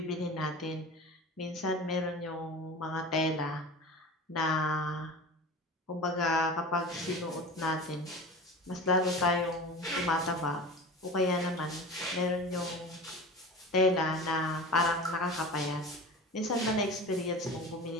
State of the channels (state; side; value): normal; both; correlation 0.34